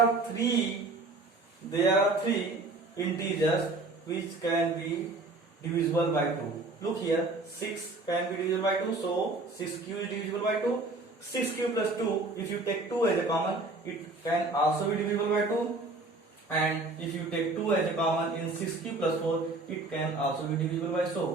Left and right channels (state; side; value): quieter; left; 3.2 dB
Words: three integers which can be divisible by 2. Look here, 6 can be divisible by 2, so 6q is divisible by 2. 6q plus 2, if you take 2 as a common, it can also be divisible by 2. And if you take 2 as a common in 6q plus 4, it can also be